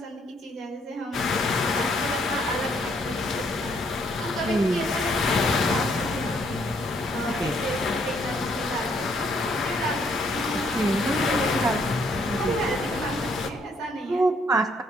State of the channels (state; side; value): normal; both; correlation 0.69